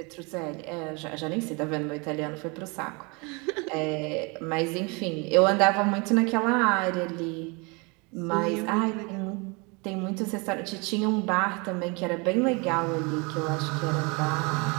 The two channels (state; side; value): quieter; left; 29.6 dB